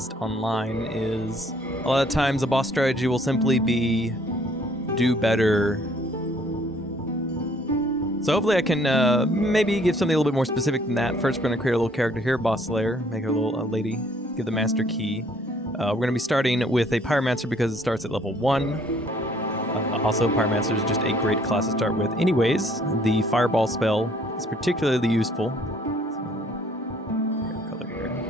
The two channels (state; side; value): normal; both; correlation 0.61